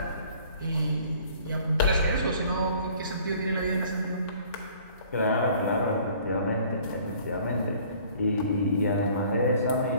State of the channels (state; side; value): inverted; both; correlation -0.54